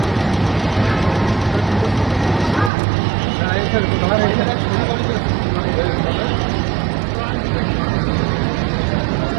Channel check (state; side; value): drops out; left; at 2.7 s